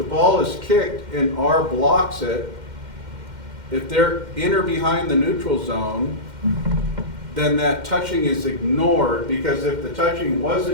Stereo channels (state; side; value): late; left; 2.1 ms